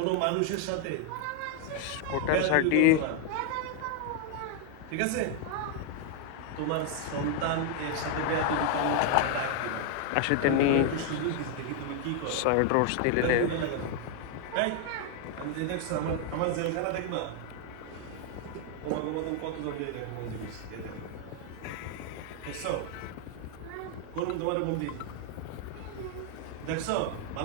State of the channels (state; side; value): different; both; correlation 0.00